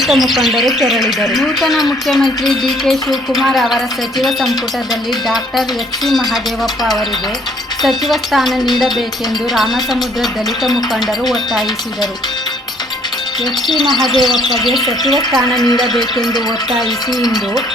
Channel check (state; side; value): normal; both; correlation 0.62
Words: ಮುಖಂಡರು ತೆರಳಿದರು. ನೂತನ ಮುಖ್ಯಮಂತ್ರಿ ಡಿ.ಕೆ. ಶಿವಕುಮಾರ್ ಅವರ ಸಚಿವ ಸಂಪುಟದಲ್ಲಿ ಡಾಕ್ಟರ್ ಎಚ್.ಸಿ. ಮಹದೇವಪ್ಪ ಅವರಿಗೆ ಸಚಿವ ಸ್ಥಾನ ನೀಡಬೇಕೆಂದು ರಾಮಸಮುದ್ರ ದಲಿತ ಮುಖಂಡರು ಒತ್ತಾಯಿಸಿದರು. ಎಚ್.ಸಿ. ಮಹದೇವಪ್ಪಗೆ ಸಚಿವ ಸ್ಥಾನ ನೀಡಬೇಕೆಂದು ಒತ್ತಾಯಿಸಿ ಇಂದು